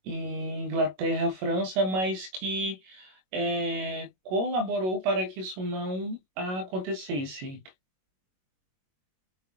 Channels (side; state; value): left; late; 21 ms